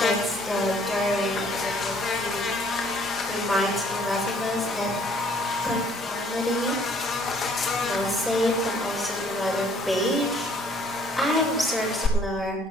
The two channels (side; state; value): both; normal; correlation 0.60